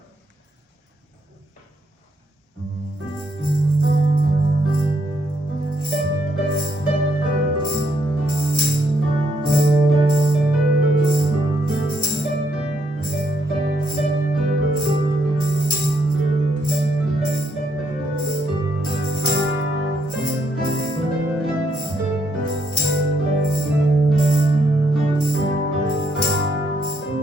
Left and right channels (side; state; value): both; normal; correlation 0.75